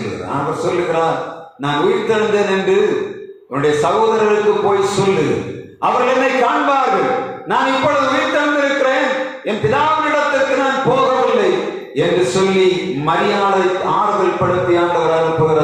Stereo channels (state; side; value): identical; both; correlation 1.00